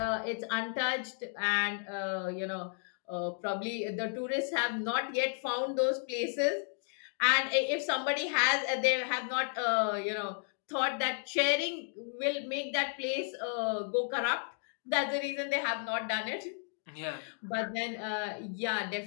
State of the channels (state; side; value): silent; right; 56 dB below the other